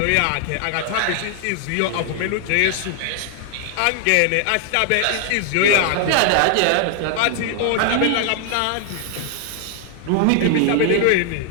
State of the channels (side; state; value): both; different; correlation 0.00